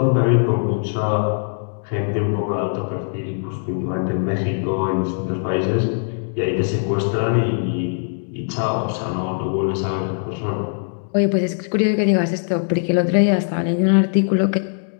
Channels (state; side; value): silent; right; digital silence